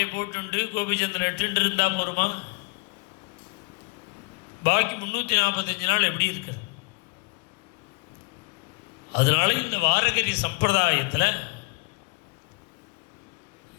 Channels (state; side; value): quieter; right; 30.4 dB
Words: போட்டுண்டு கோபிச்சந்திரன் எட்டு இருந்தால் போருமா? பாக்கி 345 நாள் எப்படி இருக்கிறது? அதனால இந்த வாரகரி சம்பிரதாயத்தில்